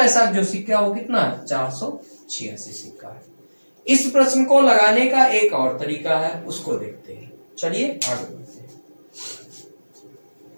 जो सिक्का वो कितना है, 486 सिक्का है। इस प्रश्न को लगाने का एक और तरीका है, उसको देखते हैं। चलिए आगे बढ़ते हैं।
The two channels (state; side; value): inverted; both; correlation -1.00